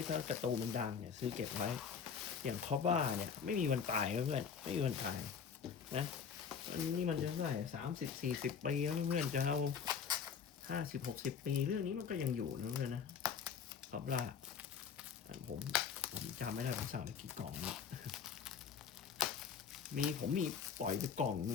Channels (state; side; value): quieter; right; 6.7 dB